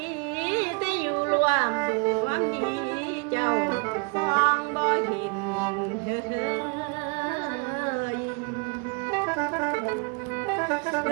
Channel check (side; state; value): left; quieter; 34.3 dB